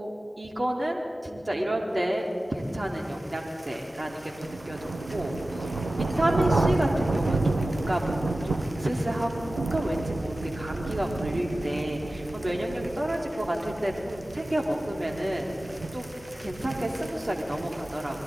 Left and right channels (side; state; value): both; normal; correlation 0.96